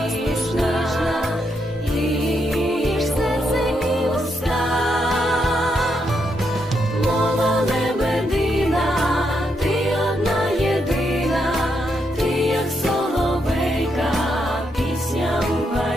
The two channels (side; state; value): both; normal; correlation 0.80